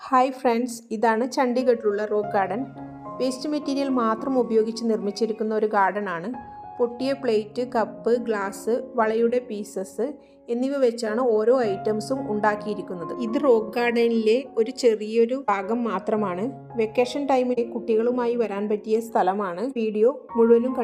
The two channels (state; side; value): identical; both; correlation 1.00